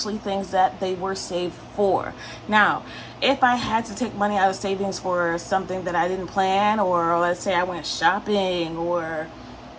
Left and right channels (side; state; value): both; identical; correlation 1.00